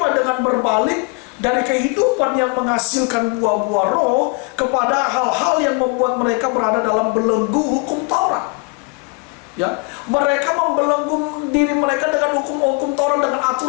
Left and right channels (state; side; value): quieter; right; 31.4 dB